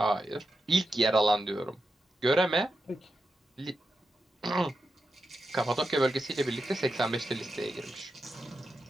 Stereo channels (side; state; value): both; normal; correlation 0.88